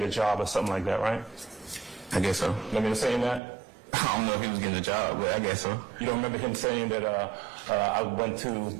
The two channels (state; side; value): drops out; left; at 3.4 s